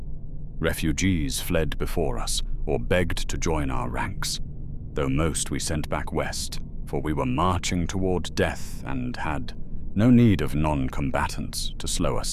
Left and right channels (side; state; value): both; identical; correlation 1.00